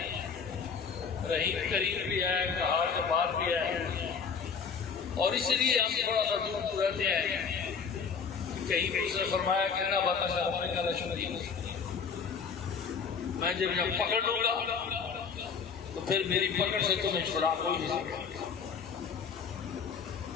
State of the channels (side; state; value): right; quieter; 6.0 dB